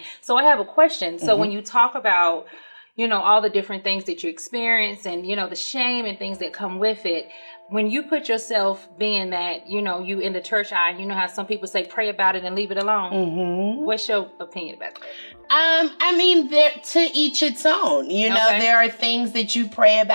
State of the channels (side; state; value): both; inverted; correlation -1.00